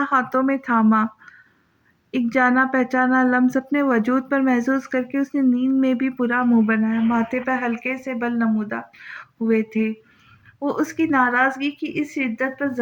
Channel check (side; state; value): both; identical; correlation 1.00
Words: ہاتھوں میں تھاما۔ ایک جانا پہچانا لمس اپنے وجود پر محسوس کر کے اس نے نیند میں بھی برا منہ بنایا۔ ماتھے پر ہلکے سے بل نمودار ہوئے تھے۔ وہ اس کی ناراضگی کی اس شدت پر